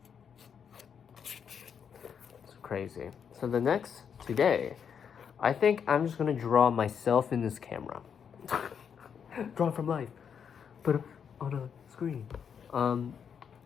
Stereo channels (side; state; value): right; quieter; 7.3 dB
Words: It's crazy. So today, I think I'm just gonna draw myself in this camera. Draw from life, but on a screen.